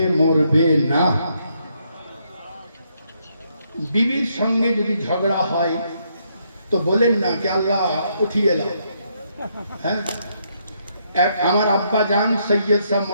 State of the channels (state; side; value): inverted; both; correlation -0.74